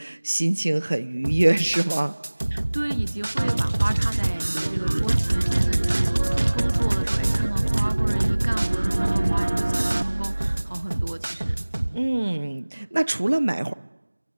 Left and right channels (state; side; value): inverted; both; correlation -1.00